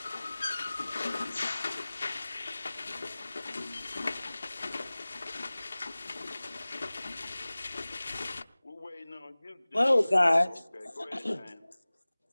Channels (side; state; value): both; inverted; correlation -0.99